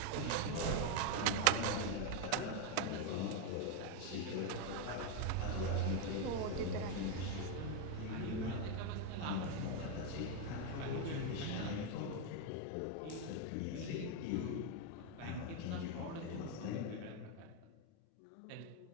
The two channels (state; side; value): different; both; correlation 0.01